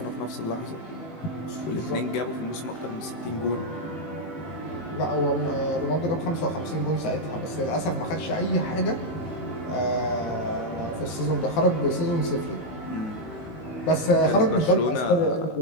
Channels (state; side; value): late; right; 19 ms